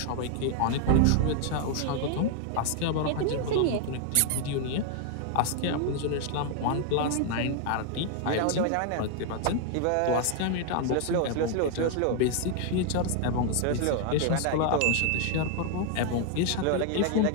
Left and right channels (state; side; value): different; both; correlation 0.00